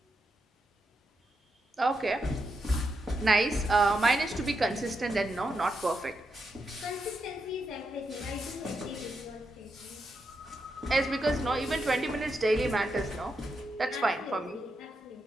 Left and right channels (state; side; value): normal; both; correlation 0.84